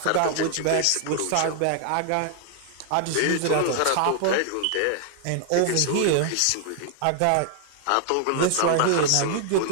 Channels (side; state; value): both; different; correlation 0.00